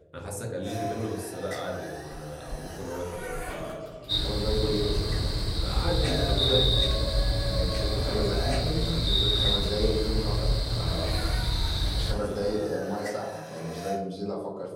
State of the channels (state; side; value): identical; both; correlation 1.00